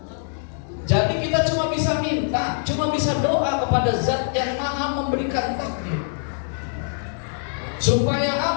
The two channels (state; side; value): silent; right; 63 dB below the other